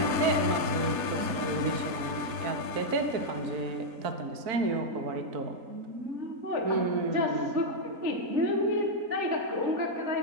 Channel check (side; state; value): left; late; 3.9 ms